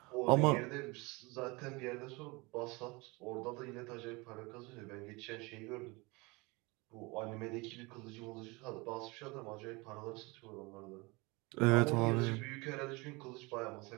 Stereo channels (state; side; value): quieter; left; 25.6 dB